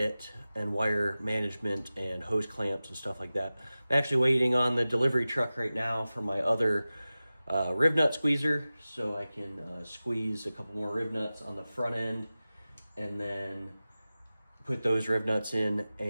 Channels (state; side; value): inverted; both; correlation -0.96